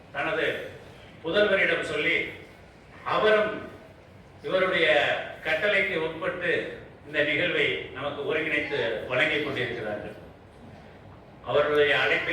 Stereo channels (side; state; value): both; identical; correlation 1.00